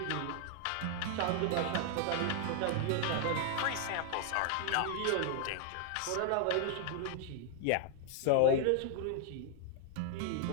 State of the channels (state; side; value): different; both; correlation 0.00